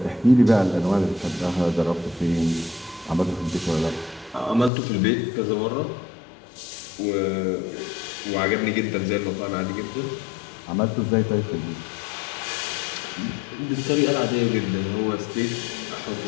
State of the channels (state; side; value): drops out; right; at 4.7 s